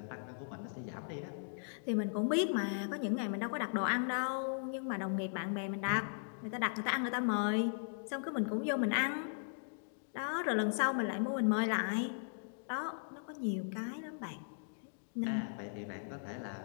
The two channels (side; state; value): right; silent; digital silence